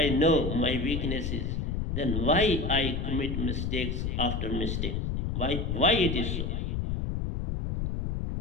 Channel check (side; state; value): left; noise; rumble, 1 dB below the sound